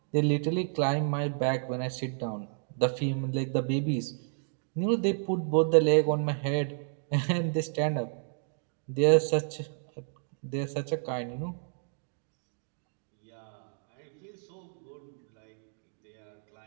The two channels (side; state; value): left; silent; digital silence